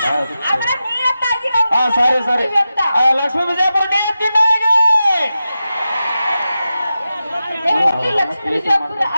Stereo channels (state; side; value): inverted; both; correlation -0.92